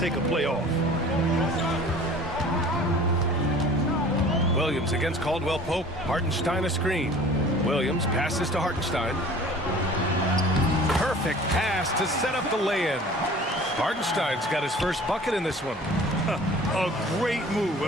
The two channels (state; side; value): normal; both; correlation 0.46